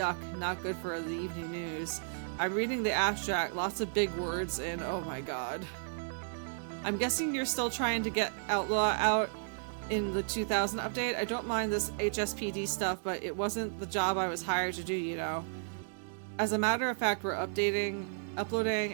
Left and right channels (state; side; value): silent; left; 55 dB below the other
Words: not good for the evening news. I'm reading the abstract, lots of big words, and oh my god. I'm guessing you're still trying to get Outlaw out in the 2000 update. I don't mind this HSPD stuff, but it wasn't the job I was hired to do, you know. As a matter of fact, we're